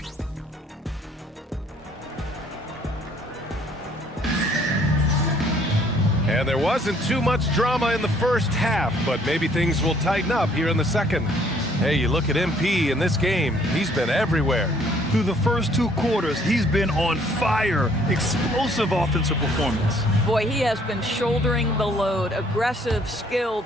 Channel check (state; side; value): normal; both; correlation 0.62